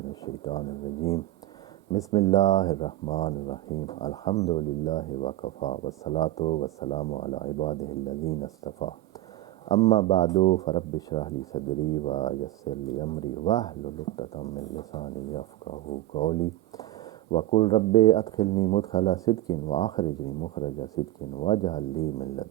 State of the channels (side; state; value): left; quieter; 15.2 dB